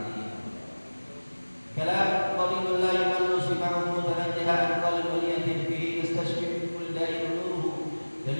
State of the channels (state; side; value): inverted; both; correlation -1.00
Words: Kalam qalilun la yumallu sima'uhu tanajjaha qalbun yatim fihi yastashfi min kulli da'in nuruhu